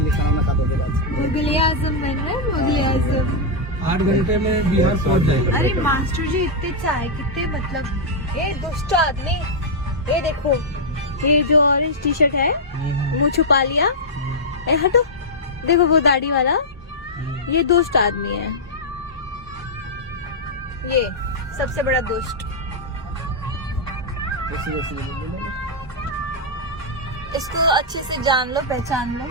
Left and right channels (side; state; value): both; normal; correlation -0.06